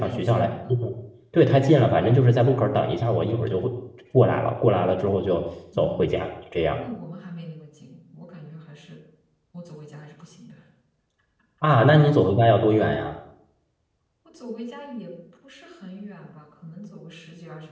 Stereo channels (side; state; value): both; identical; correlation 1.00